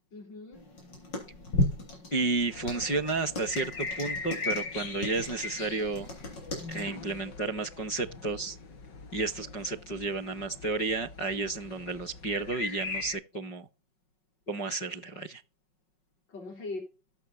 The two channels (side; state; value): right; late; 5.4 ms